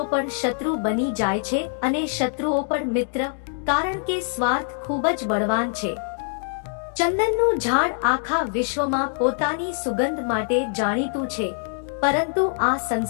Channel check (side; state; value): right; silent; 61 dB below the other